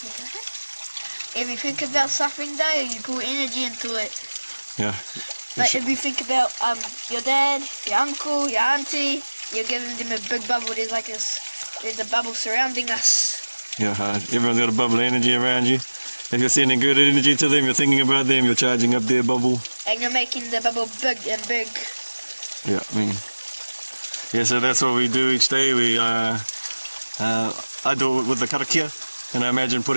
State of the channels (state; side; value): inverted; both; correlation -1.00